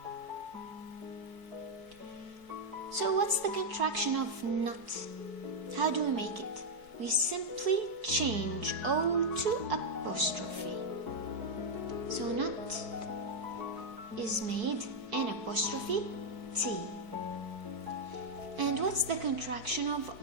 So what's the contraction of not? How do we make it? We simply change O to apostrophe. So not is made N apostrophe T. And what's the contraction of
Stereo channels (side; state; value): left; late; 4.6 ms